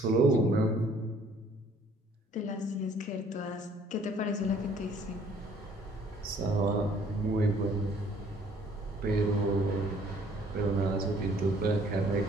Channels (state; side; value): normal; both; correlation 0.59